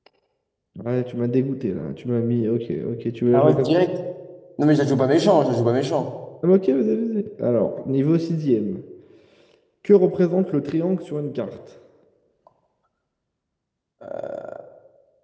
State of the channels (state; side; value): identical; both; correlation 1.00